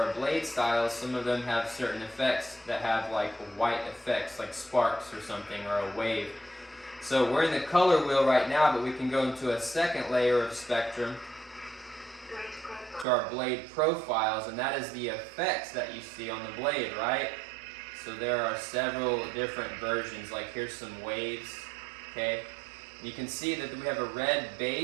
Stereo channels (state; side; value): drops out; left; at 13.1 s